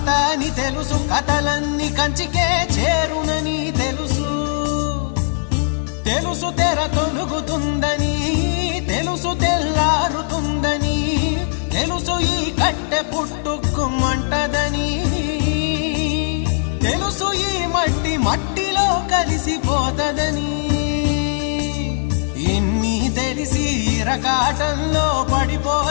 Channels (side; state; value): right; silent; digital silence